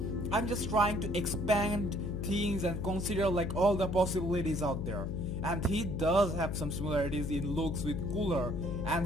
I'm just trying to expand things and consider like all the possibilities out there. And he does have some similarities in looks with Cooler,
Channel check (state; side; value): noise; left; hum, 3 dB below the sound